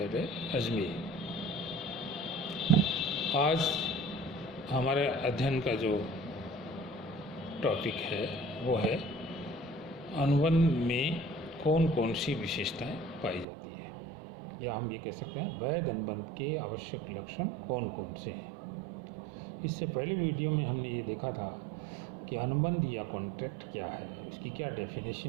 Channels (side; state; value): left; drops out; at 13.5 s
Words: अजमेर। आज हमारे अध्ययन का जो टॉपिक है वो है अनुबंध में कौन कौन सी विशेषताएं पाई जाती है, या हम ये कह सकते हैं वैध अनुबंध के आवश्यक लक्षण कौन कौन से हैं। इससे पहले वीडियो में हमने ये देखा था कि अनुबंध या कॉन्ट्रैक्ट क्या है, उसकी क्या